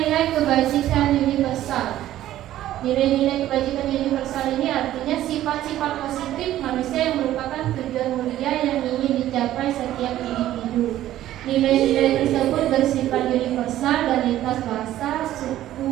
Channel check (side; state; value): left; quieter; 13.4 dB